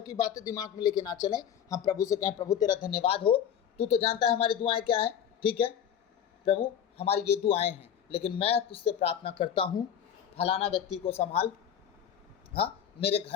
की बातें दिमाग में लेके ना चलें। हम प्रभु से कहें प्रभु तेरा धन्यवाद हो, तू तो जानता है हमारी दुआएं क्या है, ठीक है प्रभु, हमारी ये दुआएं हैं, लेकिन मैं तुझसे प्रार्थना करता हूँ, फलाना व्यक्ति को संभाल, हाँ, मेरे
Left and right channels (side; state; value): right; quieter; 9.0 dB